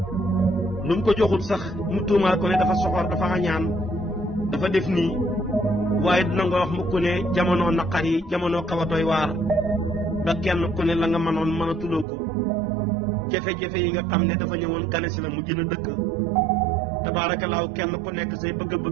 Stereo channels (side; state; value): left; drops out; at 12.1 s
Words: lu mu ko joxul sax mu tuumaal ko ne dafa soxor dafa añaan dafa def nii waaye dina nga wax mukk ne jamono naqar yi jamono xaw a doy waar ba kenn ku ne la nga mënoon mën a tuloo ko jafe-jafe yi nga xam ne dafa ñëwoon gane si la mu gën a dëkk tabaarakallaahu kenn ku nekk say